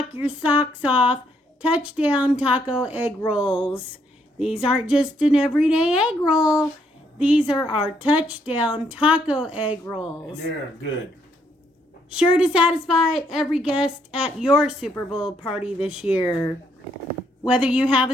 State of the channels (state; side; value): normal; both; correlation 0.72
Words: your socks off touchdown taco egg rolls. These aren't just an everyday egg roll. These are our touchdown taco egg rolls. And they're good. Sure to satisfy every guest at your Super Bowl party this year. Whether you have